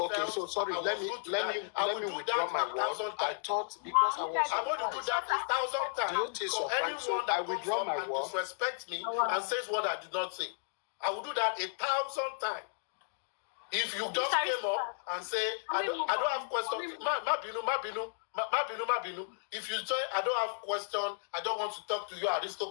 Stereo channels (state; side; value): silent; right; digital silence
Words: so sorry, let me withdraw my word. I thought because I'm going to do that 1,000 times. So anyone that comes up and disrespects me and says what I did not say, I will do that 1,000 times. If you just came up and say, I don't have questions, Mabinu. If you say, I don't have questions, I don't want to talk to you,